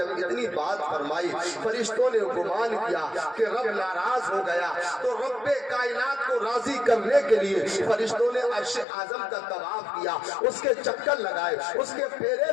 اتنی بات فرمائی، فرشتوں نے گمان کیا کہ رب ناراض ہو گیا، تو رب کائنات کو راضی کرنے کے لیے فرشتوں نے عرش اعظم کا طواف کیا، اس کے چکر لگائے، اس کے پھیرے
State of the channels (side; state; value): right; drops out; at 8.8 s